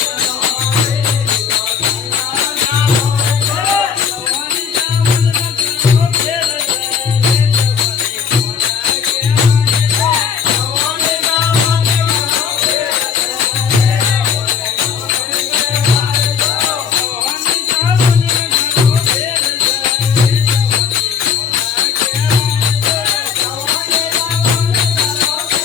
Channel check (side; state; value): right; quieter; 6.7 dB